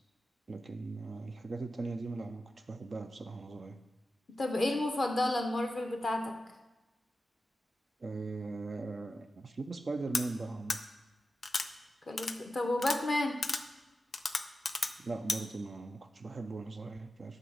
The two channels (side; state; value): both; normal; correlation 0.91